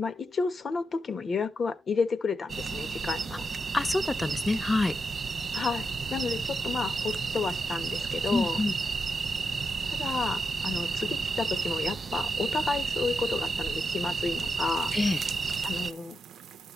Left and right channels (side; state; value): both; normal; correlation 0.85